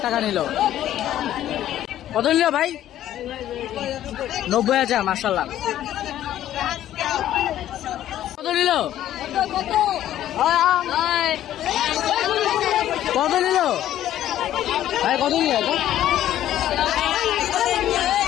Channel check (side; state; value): right; quieter; 12.3 dB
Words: টাকা নিল। কত নিল ভাই? 90,000। মাশাআল্লাহ। কত নিল? কত নিল ভাই? কত নিল